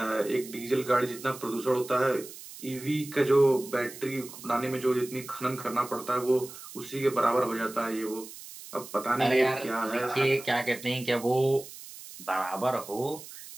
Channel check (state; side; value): noise; right; hiss, 15 dB below the sound